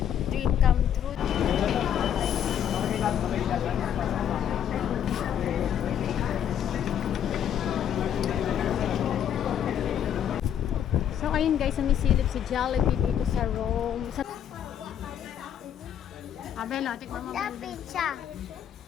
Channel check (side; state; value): right; quieter; 9.5 dB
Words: dream come true. So, ayun guys, sumisilip si Jollibee dito sa Rome. Sa... Abela, tikman mo ba? Pizza.